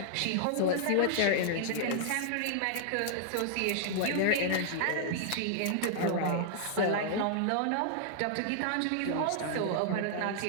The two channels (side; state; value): both; different; correlation -0.01